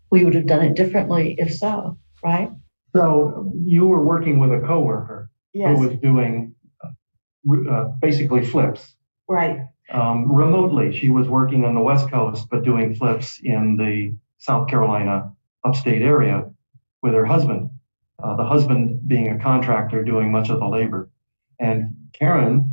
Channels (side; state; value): both; inverted; correlation -1.00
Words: We would have done it differently if so, right? So you were working with a coworker Yes. who was doing basically flips. Right. Remotely. She was working on the West Coast, but doing flips in the South Carolina upstate area with her husband, the husband being a contractor doing much of the labor. And